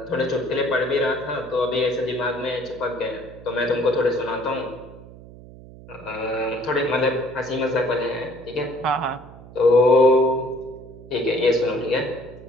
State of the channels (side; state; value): right; noise; hum, 18 dB below the sound